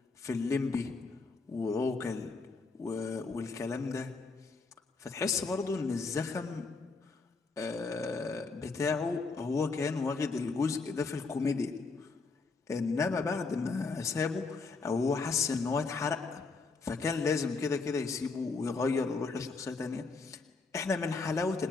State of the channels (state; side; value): quieter; right; 4.1 dB